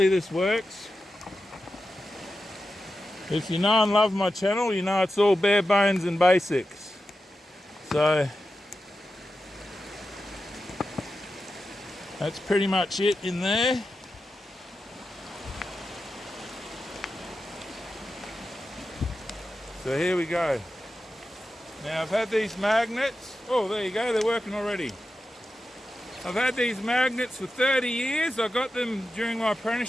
this works. If you know and love my channel, you know it's all bare bones and basics. So that's pretty much it in there. So here we go. Now I've had these magnets. Oh, there you go, they're working already. I've had these magnets for 30 years. I got them during my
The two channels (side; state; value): both; normal; correlation 0.91